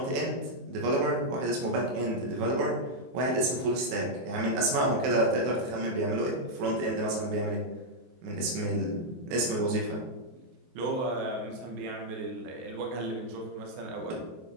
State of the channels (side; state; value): left; late; 23 ms